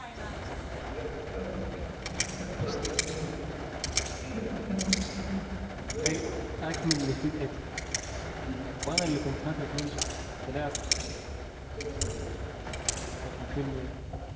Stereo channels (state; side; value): identical; both; correlation 1.00